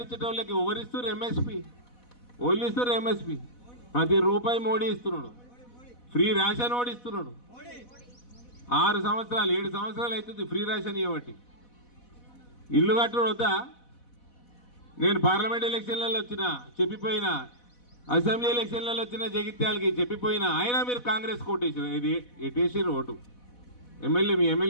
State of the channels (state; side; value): late; right; 4.1 ms